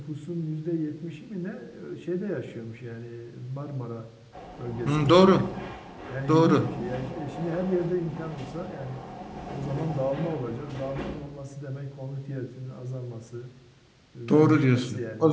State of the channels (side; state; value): both; identical; correlation 1.00